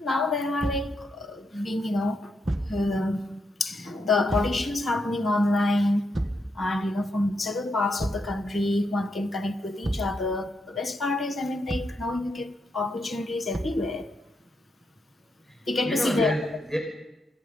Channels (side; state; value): both; normal; correlation 0.81